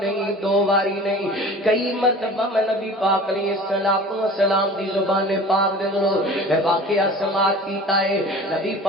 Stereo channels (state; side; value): normal; both; correlation 0.41